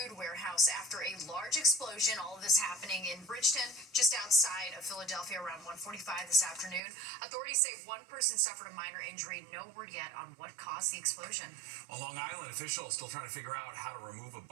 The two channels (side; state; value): left; drops out; at 6.8 s